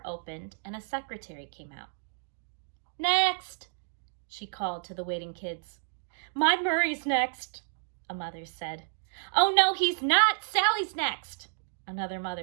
opened and a secretary came out. "Next!" she called to the waiting kids. "My Murray's next," a mother said. "Oh no, he's not! Sally's next," another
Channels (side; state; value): left; silent; digital silence